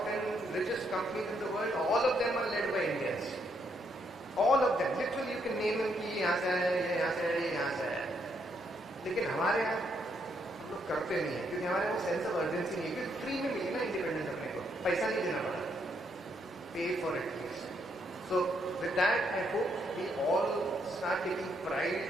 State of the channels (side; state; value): both; normal; correlation 0.75